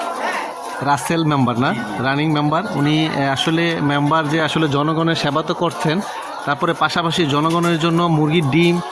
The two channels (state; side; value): identical; both; correlation 1.00